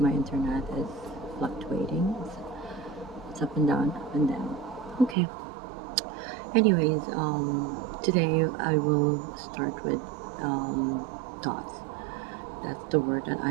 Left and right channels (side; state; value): left; drops out; at 5.2 s